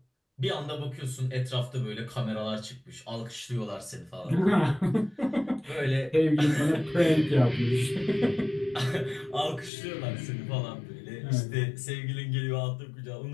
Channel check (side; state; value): right; drops out; at 9.7 s